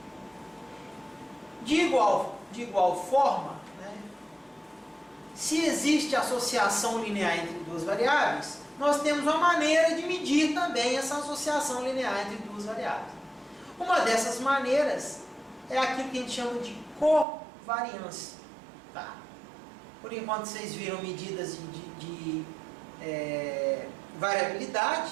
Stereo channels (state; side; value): drops out; left; at 17.2 s